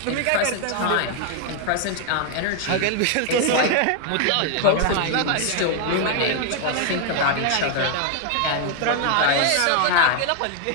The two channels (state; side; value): different; both; correlation 0.00